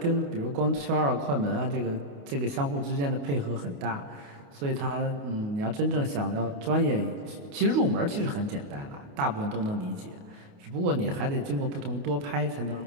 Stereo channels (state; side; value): late; left; 28 ms